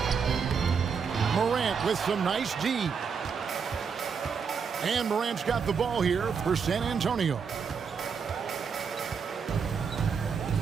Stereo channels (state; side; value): quieter; left; 6.1 dB